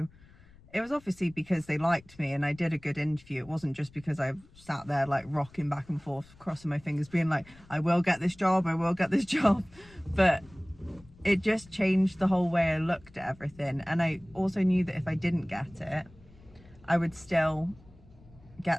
it was obviously because they liked me and I did a good interview. It wasn't just because I sat there like rocking back and forth, crossing my fingers, being like, I will get this job, I will get this job. But it just changed the whole way I looked at everything. And I also knew that if I didn't get it, I would still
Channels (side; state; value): left; noise; rumble, 25 dB below the sound